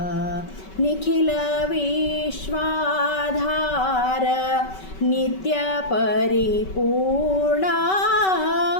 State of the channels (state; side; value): late; right; 5.3 ms